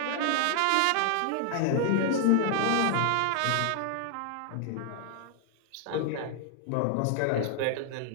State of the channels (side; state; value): both; different; correlation 0.00